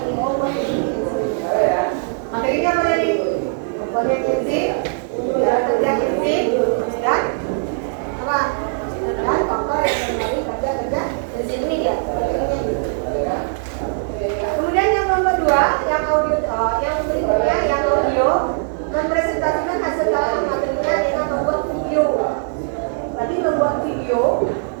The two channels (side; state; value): left; silent; digital silence